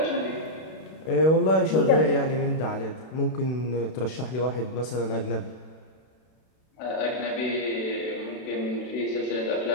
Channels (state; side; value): late; right; 32 ms